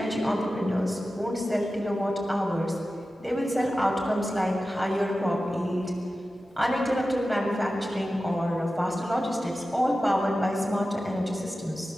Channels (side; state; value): both; normal; correlation 0.94